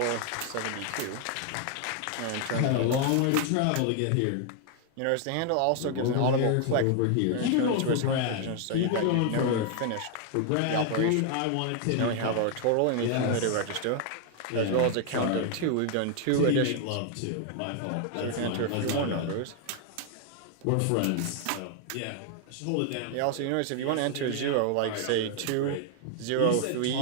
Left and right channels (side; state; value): both; different; correlation 0.00